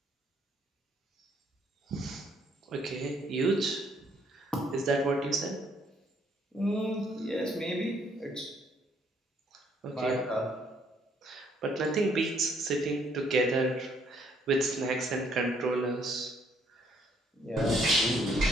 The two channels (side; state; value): both; normal; correlation 0.67